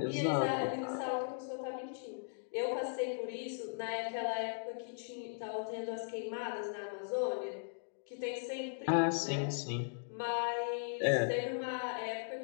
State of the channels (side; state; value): right; silent; digital silence